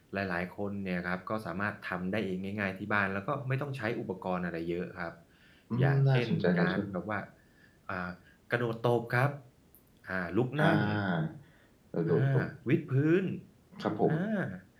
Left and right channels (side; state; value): both; identical; correlation 1.00